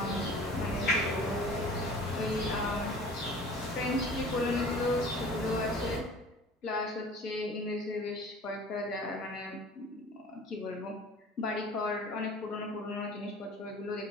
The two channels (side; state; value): both; normal; correlation 0.44